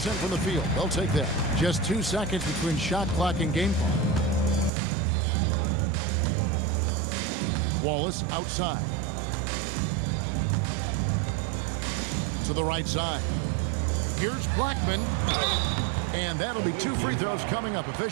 from the field. They'll take that. Just 2 seconds between shot clock and game clock. Wallace outside. To the right side. Here's Blackman. And that'll be 2 free throws coming up.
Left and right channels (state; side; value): drops out; left; at 4.7 s